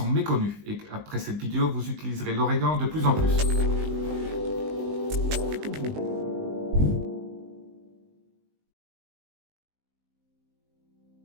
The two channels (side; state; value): left; late; 19 ms